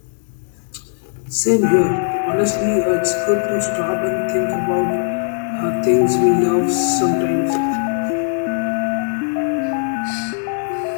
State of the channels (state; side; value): silent; right; digital silence